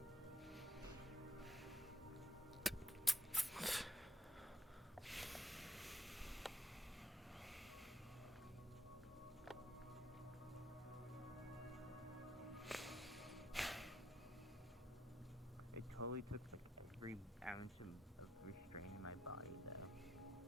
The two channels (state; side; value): normal; both; correlation 0.78